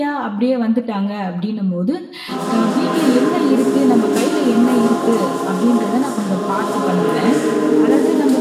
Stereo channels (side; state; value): both; identical; correlation 1.00